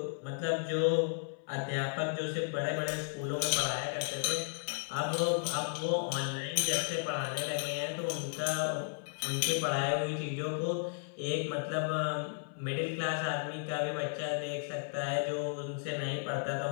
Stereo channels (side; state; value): right; silent; 55 dB below the other